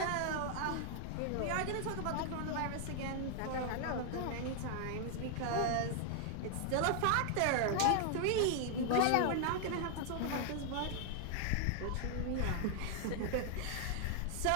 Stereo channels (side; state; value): both; different; correlation 0.00